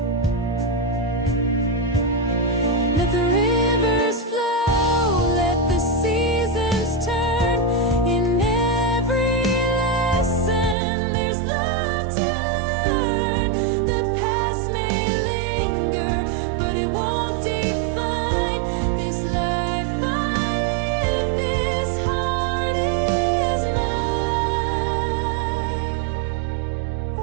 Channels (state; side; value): drops out; left; at 10.8 s